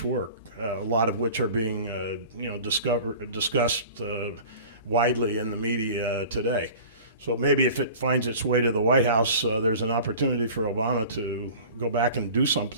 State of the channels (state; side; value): inverted; both; correlation -0.41